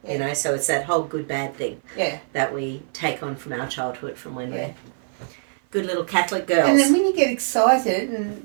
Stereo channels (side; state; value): left; silent; 57 dB below the other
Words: You know, so it's that whole good-bad thing that we take on from our childhood, from when we're good little Catholic girls. And then when you get excited and